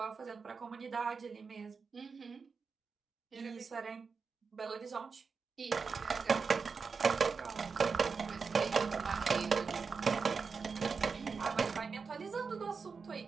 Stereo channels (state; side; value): quieter; left; 5.1 dB